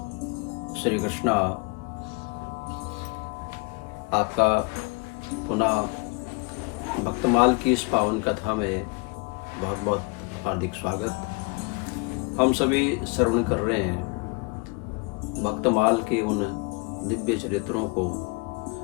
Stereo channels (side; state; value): right; quieter; 29.7 dB